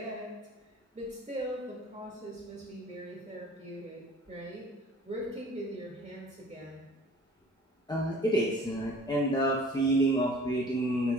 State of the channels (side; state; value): both; normal; correlation 0.49